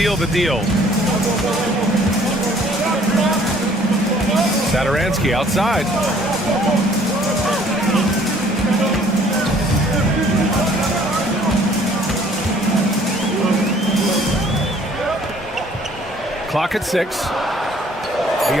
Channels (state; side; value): normal; both; correlation 0.58